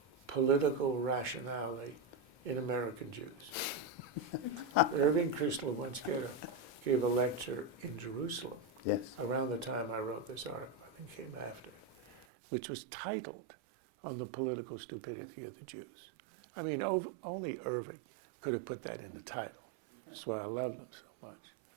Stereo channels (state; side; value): drops out; left; at 12.2 s